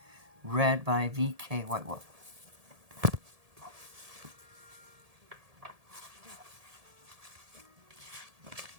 read by VK Whitewolf.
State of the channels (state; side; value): late; left; 1.7 ms